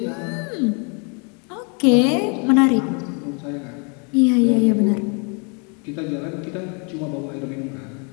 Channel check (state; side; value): quieter; right; 35.9 dB